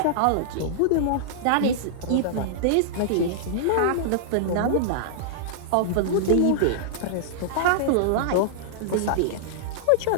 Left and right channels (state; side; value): different; both; correlation -0.01